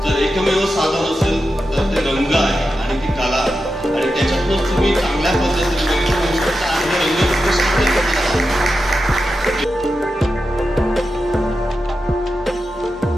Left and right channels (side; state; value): both; normal; correlation 0.90